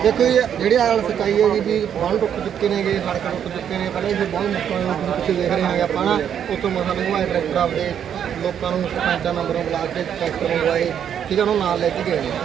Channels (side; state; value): left; quieter; 8.9 dB